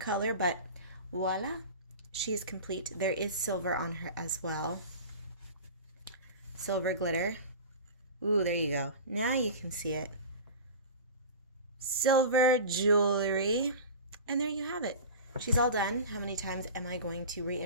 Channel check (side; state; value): both; inverted; correlation -0.33